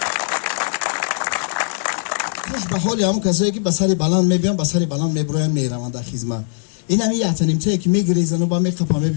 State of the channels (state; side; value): silent; right; digital silence